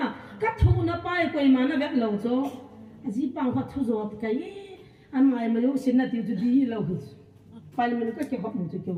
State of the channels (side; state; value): both; identical; correlation 1.00